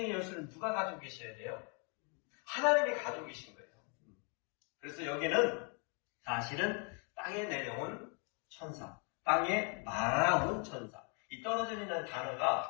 열쇠는 누가 가지고 계셔야 돼요? 하나님이 가지고 계신 거예요. 그래서 여기는 사실은 땅에 내려온 천사, 땅에 날아온 천사. 이 떨어진이라는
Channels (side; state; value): right; quieter; 36.7 dB